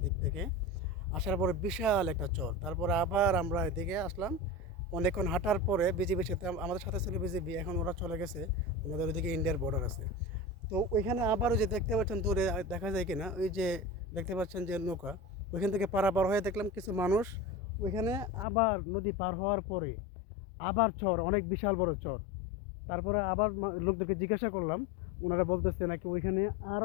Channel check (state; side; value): drops out; right; at 18.4 s